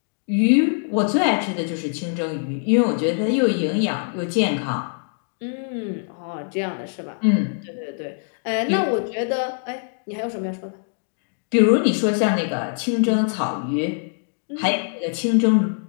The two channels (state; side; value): silent; right; digital silence